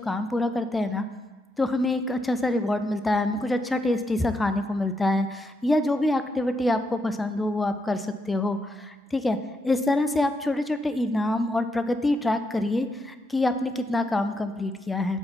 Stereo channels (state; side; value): normal; both; correlation 0.81